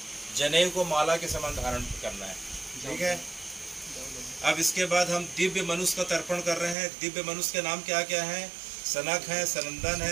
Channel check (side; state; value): left; drops out; at 6.8 s